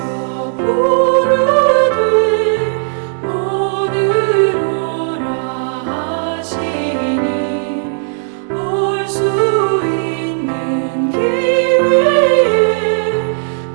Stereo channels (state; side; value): silent; left; digital silence